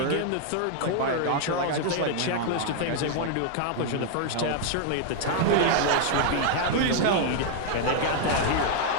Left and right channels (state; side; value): different; both; correlation 0.00